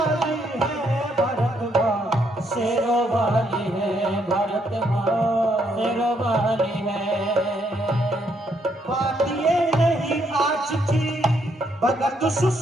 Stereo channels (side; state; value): both; normal; correlation 0.73